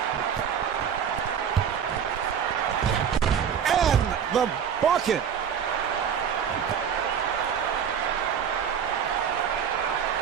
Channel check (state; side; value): quieter; left; 7.9 dB